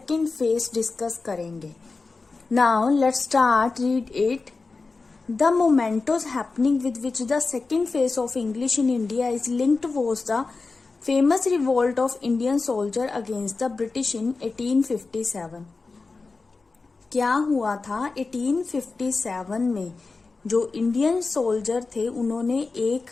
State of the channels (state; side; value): quieter; right; 4.0 dB